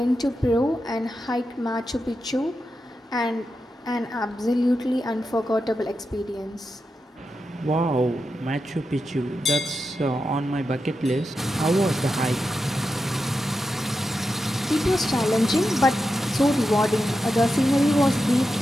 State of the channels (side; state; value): both; normal; correlation 0.89